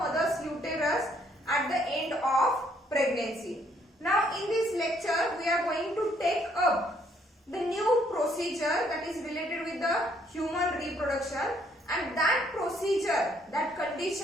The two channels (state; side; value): normal; both; correlation 0.67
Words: uterus at the end of pregnancy. Now in this lecture we are going to take up the new procedure that is related with the human reproduction, and that procedure, that